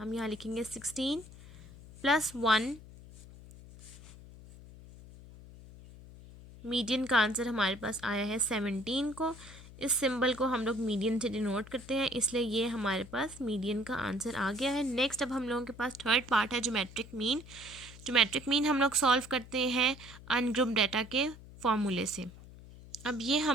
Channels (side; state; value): left; noise; hum, 18 dB below the sound